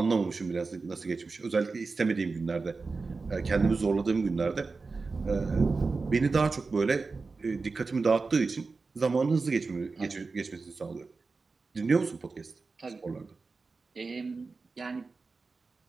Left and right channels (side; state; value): left; quieter; 4.1 dB